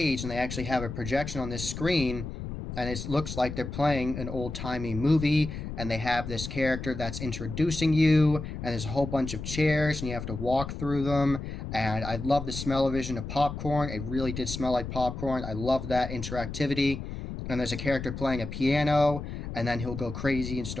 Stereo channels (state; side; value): noise; left; rumble, 7 dB below the sound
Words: and they actually have a projection on this screen, and it looks like they're playing an old-timey movie, and they have this character that's introducing you, and there's a whole bunch of chairs and you have to walk through them. And I love the smell-o-vision of popcorn. It really did smell like popcorn. I love that interactivity. And there's a character playing a piano, and then he'll go crazy and